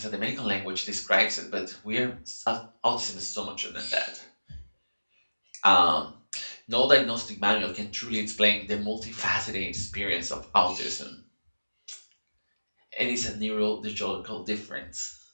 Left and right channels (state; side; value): inverted; both; correlation -1.00